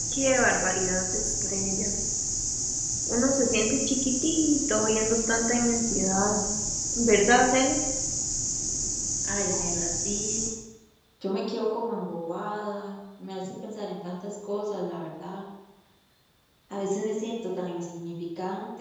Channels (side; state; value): both; identical; correlation 1.00